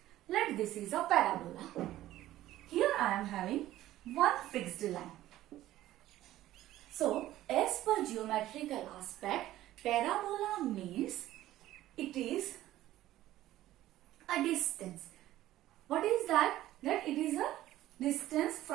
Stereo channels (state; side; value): quieter; left; 14.5 dB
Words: Let this is a parabola. Here I am having one fixed line. So as per geometrical aspect, parabola means it is a distance. What is that? That it is a distance